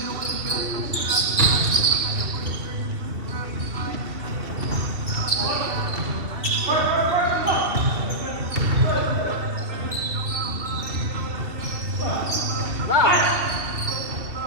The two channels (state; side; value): late; left; 2.7 ms